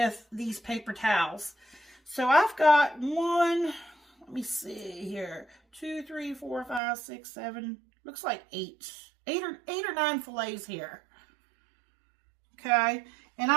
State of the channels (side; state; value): left; drops out; at 6.8 s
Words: these paper towels. So I've got one. Let me see here. 2, 3, 4, 5, 6, 7. Looks like 8 or 9 fillets here. Okay. And